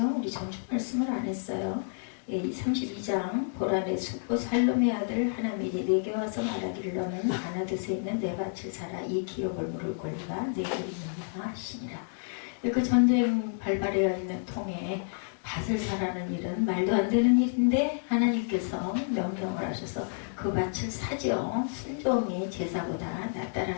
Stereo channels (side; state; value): right; silent; digital silence